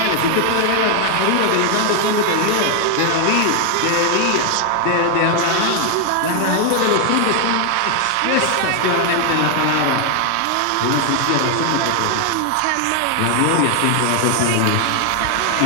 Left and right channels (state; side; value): different; both; correlation 0.00